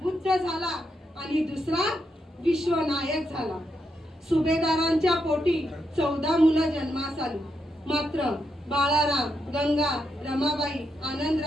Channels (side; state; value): both; normal; correlation 0.81